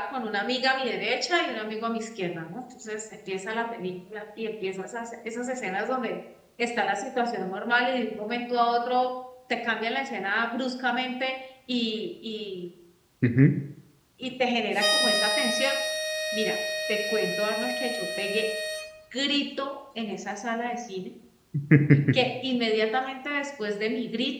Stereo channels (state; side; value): identical; both; correlation 1.00